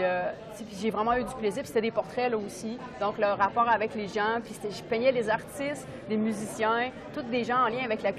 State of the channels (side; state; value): both; identical; correlation 1.00